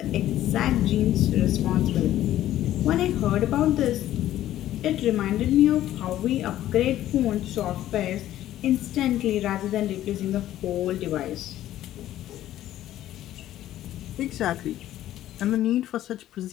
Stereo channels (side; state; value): right; quieter; 13.2 dB